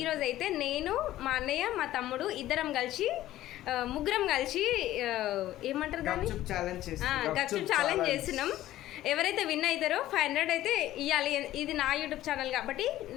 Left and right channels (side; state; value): right; quieter; 14.4 dB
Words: అయితే నేను మా అన్నయ్య మా తమ్ముడు ఇద్దరం కలిసి ముగ్గురం కలిసి ఏమంటారు దాన్ని గప్చుప్ ఛాలెంజ్ చేస్తున్నాం. ఎవరైతే విన్ అవుతారో 500 అయితే ఇవ్వాలి. ఇది నా యూట్యూబ్ ఛానల్ కాబట్టి